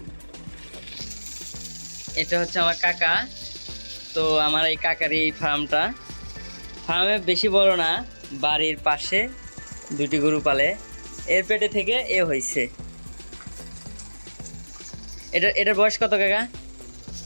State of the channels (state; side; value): inverted; both; correlation -1.00